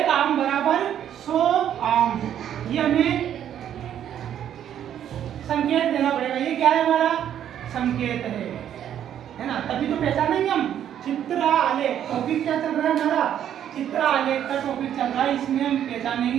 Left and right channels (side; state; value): left; quieter; 10.1 dB